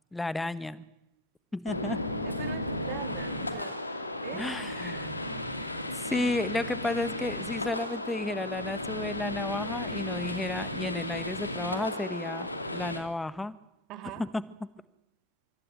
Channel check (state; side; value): normal; both; correlation 0.23